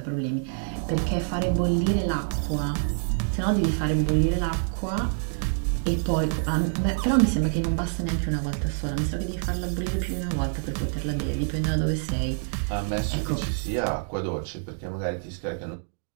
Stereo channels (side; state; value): left; silent; digital silence